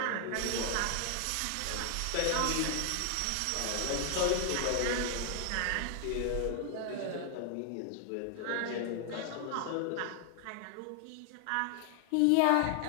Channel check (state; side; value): different; both; correlation 0.00